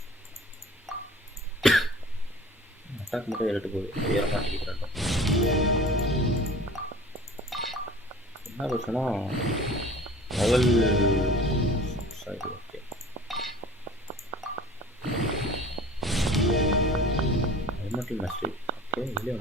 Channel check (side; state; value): both; normal; correlation 0.44